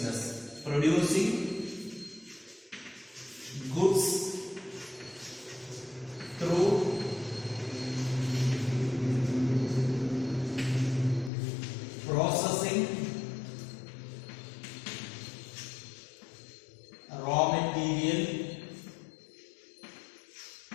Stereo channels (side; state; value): right; drops out; at 11.3 s